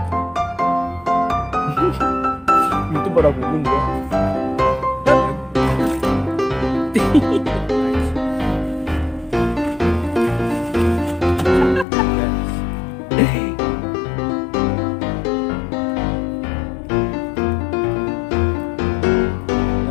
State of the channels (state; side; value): drops out; right; at 11.9 s